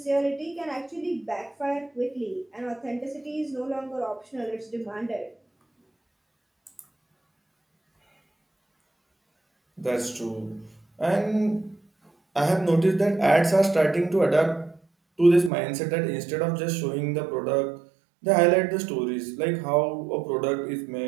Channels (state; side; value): drops out; left; at 15.5 s